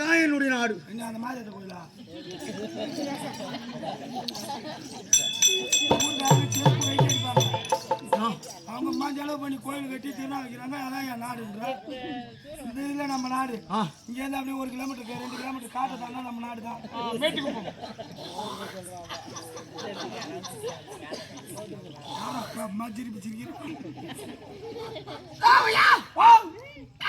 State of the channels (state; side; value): identical; both; correlation 1.00